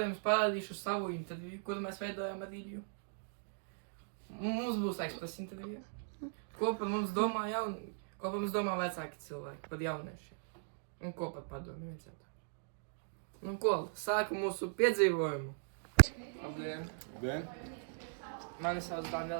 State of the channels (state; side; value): silent; left; digital silence